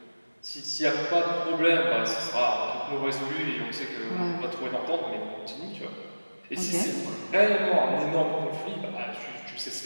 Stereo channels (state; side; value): inverted; both; correlation -1.00